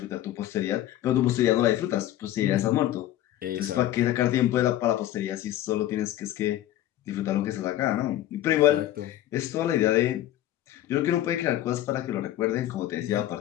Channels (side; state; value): right; quieter; 13.4 dB